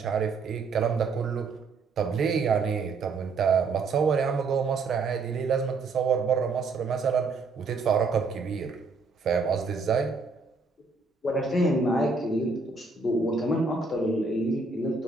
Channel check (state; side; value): quieter; left; 4.1 dB